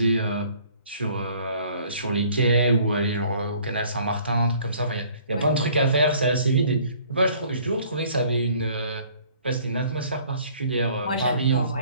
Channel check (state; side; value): inverted; both; correlation -0.56